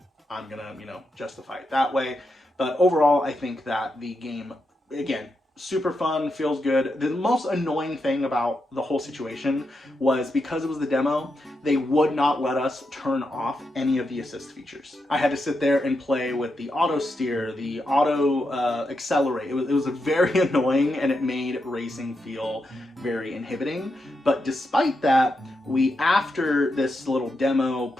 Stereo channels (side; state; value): both; normal; correlation 0.85